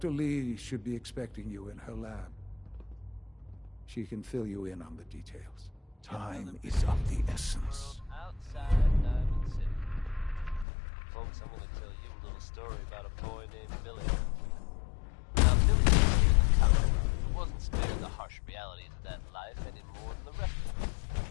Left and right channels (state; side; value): drops out; right; at 10.7 s